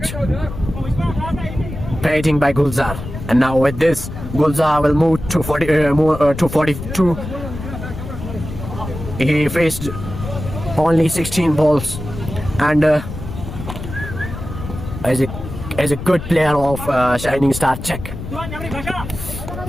batting by Gulzar. And now with this, Gulzar will move to 42. He faced only 16 balls, and as a good player of Shining Star check.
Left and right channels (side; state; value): left; noise; rumble, 9 dB below the sound